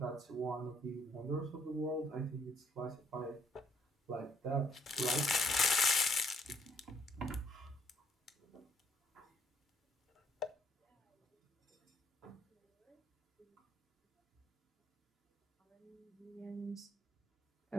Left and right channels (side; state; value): both; normal; correlation 0.68